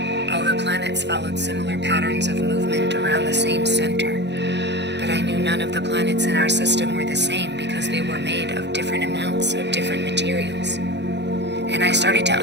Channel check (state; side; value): late; left; 0.50 ms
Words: All the planets followed similar patterns of movement around the same center, but I knew none of the planets in our system were the same because they were made of different amounts of different materials. And I started to